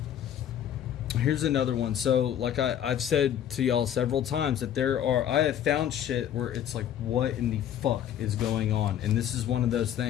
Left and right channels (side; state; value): right; quieter; 10.2 dB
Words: Here's another one. So, like I've said to y'all several times, that I have found shit where it's like, what in the fuck is going on? And this is one of those